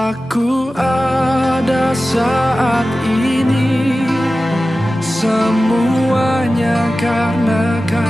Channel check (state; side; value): normal; both; correlation 0.95